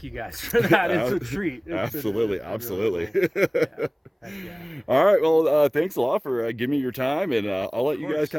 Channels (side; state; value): both; identical; correlation 1.00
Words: you guys for that. It's a treat. It's been really Absolutely. cool. Yeah. Heck yeah. All right. Well, thanks a lot for giving me your time, and I'll let you guys course.